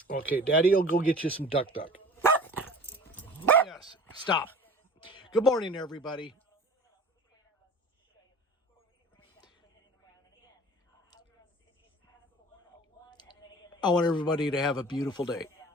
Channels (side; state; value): both; normal; correlation 0.41